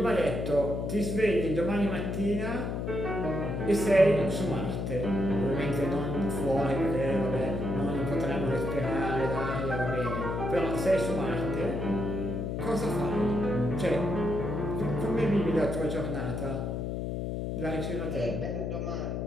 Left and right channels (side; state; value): left; noise; hum, 2 dB below the sound